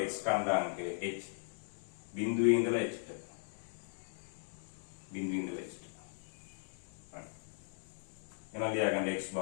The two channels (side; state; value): right; silent; digital silence